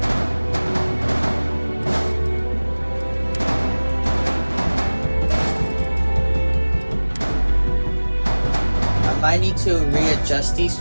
I need to readjust these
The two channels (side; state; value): both; inverted; correlation -1.00